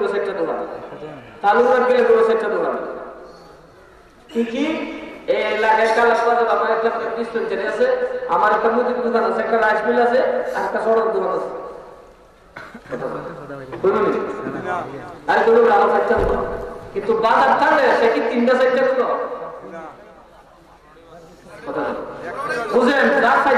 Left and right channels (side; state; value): both; identical; correlation 1.00